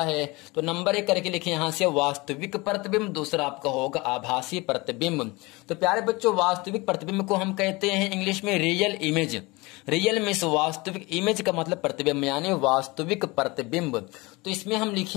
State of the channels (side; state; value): right; quieter; 23.9 dB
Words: है। तो नंबर 1 करके लिखे यहां से, वास्तविक प्रतिबिंब, दूसरा आपका होगा आभासी प्रतिबिंब। तो प्यारे बच्चों, वास्तविक प्रतिबिंब को हम कहते हैं इंग्लिश में रियल इमेज। रियल मीन्स वास्तविक, इमेज का मतलब प्रतिबिंब, यानी वास्तविक प्रतिबिंब। तो इसमें हम